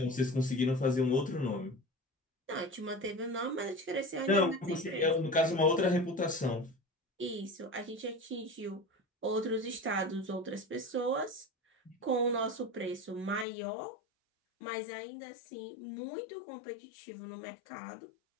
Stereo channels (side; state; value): right; drops out; at 13.5 s